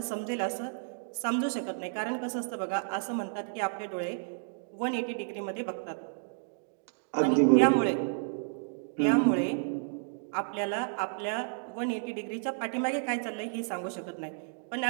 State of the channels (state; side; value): silent; left; digital silence